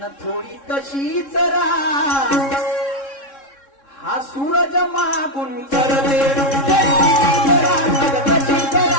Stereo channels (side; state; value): right; late; 3.6 ms